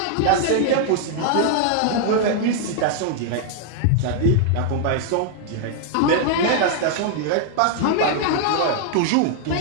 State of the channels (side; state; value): both; different; correlation 0.00